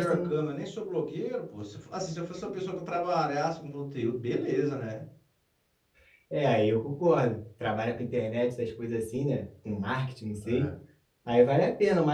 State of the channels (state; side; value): identical; both; correlation 1.00